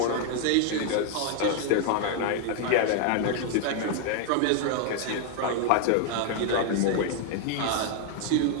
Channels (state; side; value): different; both; correlation 0.00